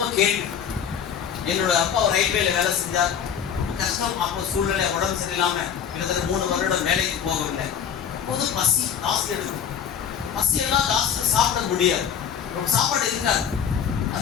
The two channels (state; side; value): quieter; right; 8.1 dB